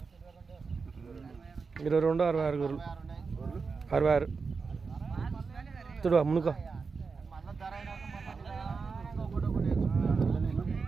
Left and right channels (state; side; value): quieter; left; 4.9 dB